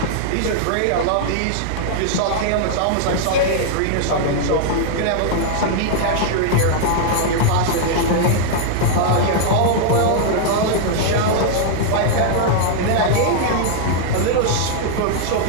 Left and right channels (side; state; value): both; different; correlation -0.01